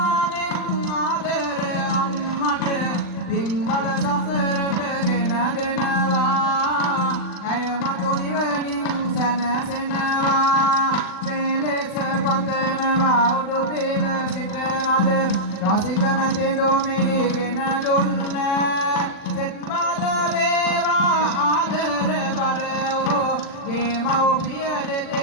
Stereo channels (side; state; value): right; late; 40 ms